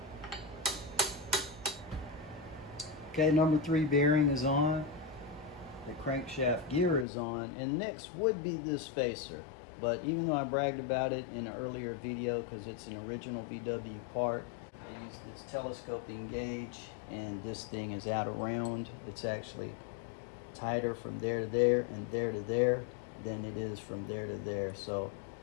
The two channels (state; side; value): drops out; right; at 7.1 s